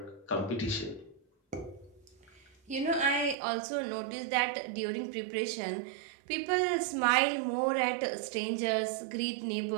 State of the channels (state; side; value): drops out; left; at 3.4 s